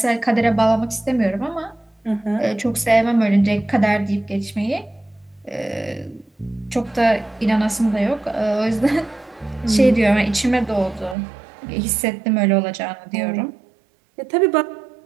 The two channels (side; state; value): left; drops out; at 11.2 s